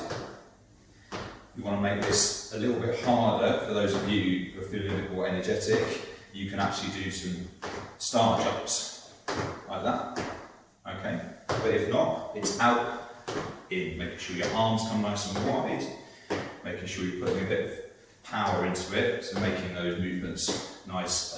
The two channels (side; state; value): both; identical; correlation 1.00